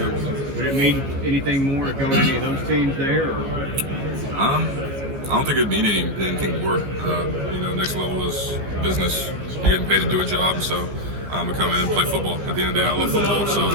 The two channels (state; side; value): late; left; 15 ms